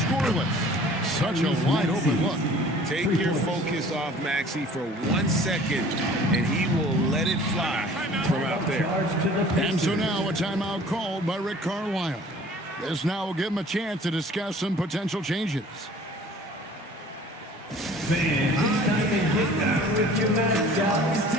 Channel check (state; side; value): normal; both; correlation 0.49